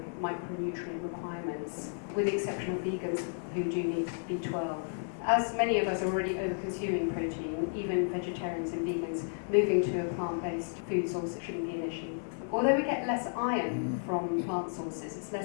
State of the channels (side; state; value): right; silent; 56 dB below the other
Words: micronutrient requirements, with the exception of vegans who do need B12. As many of us are already over-consuming protein, even vegetarians and vegans, moving to a plant-based food source shouldn't be an issue. Although we get less iron from plant sources, it's